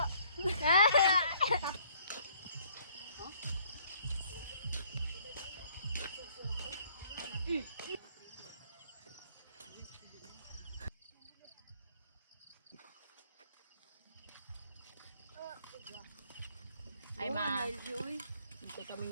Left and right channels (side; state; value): both; inverted; correlation -0.62